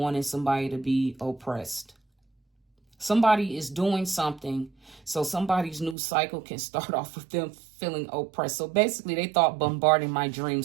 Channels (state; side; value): drops out; left; at 6.0 s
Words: somebody to be oppressed. Somebody is doing something so somebody's new cycle can start off with them feeling oppressed. So basically, they thought bombarding my dream